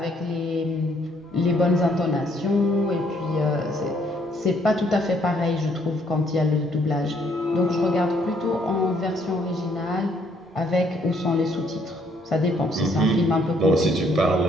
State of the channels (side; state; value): both; normal; correlation 0.67